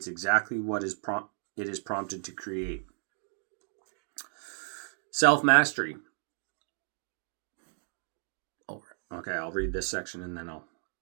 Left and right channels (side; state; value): left; silent; 56 dB below the other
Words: exactly what it is prompted to create. Self-mastery. Okay, I'll read this section and then